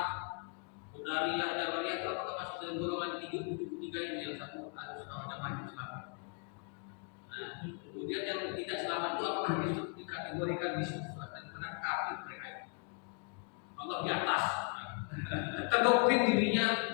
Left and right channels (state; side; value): quieter; right; 40.0 dB